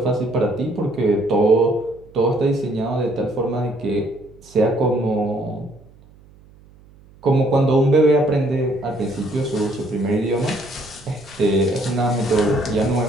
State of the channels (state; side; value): noise; right; hum, 26 dB below the sound